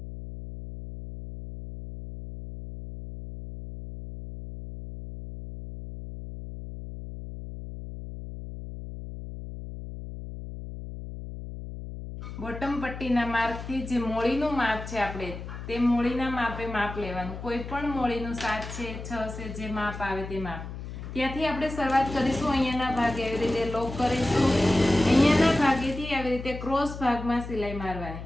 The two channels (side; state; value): left; noise; hum, 10 dB below the sound